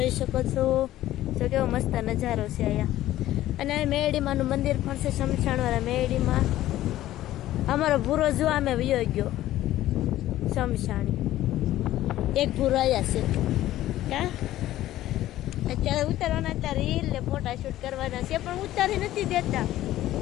શકો છો। તો કેવો મસ્ત નજારો છે અહીંયા અને મેરડીમાનું મંદિર પણ છે શમશાનવાળા મેરડીમાં અમારો ભૂરો જો અમે વયો ગયો શમશાણી એક ભૂરો આવ્યા છે કા અત્યારે ઉતારવાના હતા રીલ ને ફોટા શૂટ કરવાના છે પણ ઉતારી નથી દેતા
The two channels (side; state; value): right; quieter; 14.3 dB